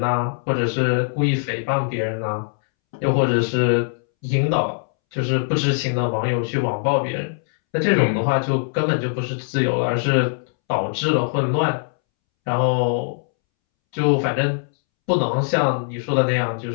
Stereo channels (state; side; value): silent; right; 65 dB below the other